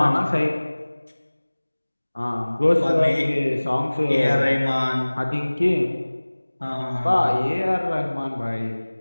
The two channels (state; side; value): inverted; both; correlation -1.00